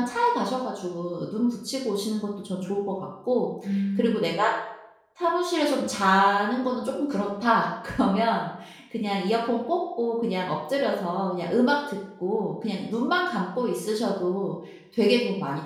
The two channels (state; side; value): identical; both; correlation 1.00